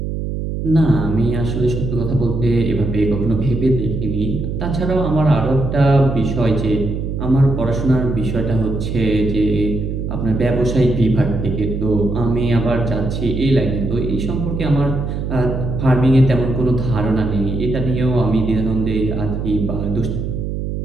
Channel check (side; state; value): right; noise; hum, 3 dB below the sound